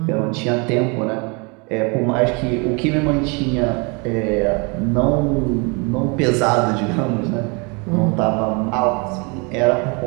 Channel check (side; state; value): left; quieter; 31.3 dB